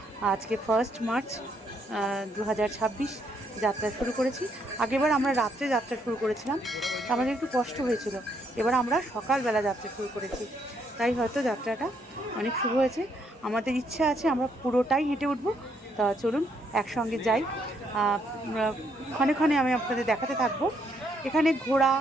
আজকে 1 মার্চ 2026 যাত্রা শুরু করেছি। আগেবার আমরা রাত্রে যাত্রা শুরু করেছিলাম, আমাদের একটু কষ্ট হয়েছিল। এবার আমরা সকালবেলা যাত্রা শুরু করেছি, তাই হয়তো যাত্রাটা অনেক শুভ হয়েছে। আমাদের ইচ্ছা আছে আমরা পুরোটাই হেঁটে উঠব। তা চলুন একসঙ্গে যাই। ক্ষণে ক্ষণে আমি আপনাদের দেখাতে থাকবো। এখানে ঘোড়া,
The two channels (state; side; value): normal; both; correlation 0.73